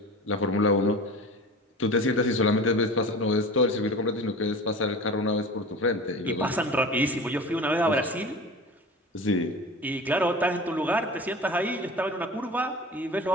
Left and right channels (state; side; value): normal; both; correlation 0.35